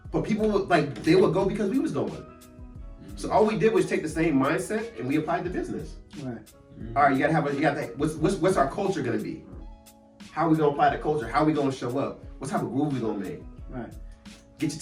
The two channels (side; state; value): both; identical; correlation 1.00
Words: But people would they would go because we was going. So all we did was take the same mindset and we applied to business. Right. All right, you gotta what's our culture gonna be? How are we gonna apply the culture? How are we gonna show up? What type of groove we gonna make? Right. Get your